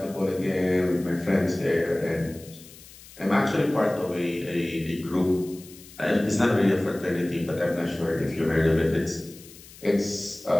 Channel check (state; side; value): noise; left; hiss, 20 dB below the sound